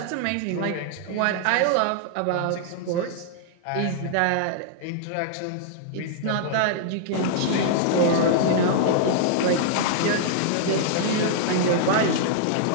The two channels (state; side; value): different; both; correlation -0.01